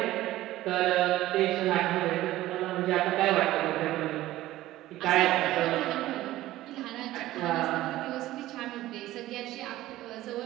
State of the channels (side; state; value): left; quieter; 15.6 dB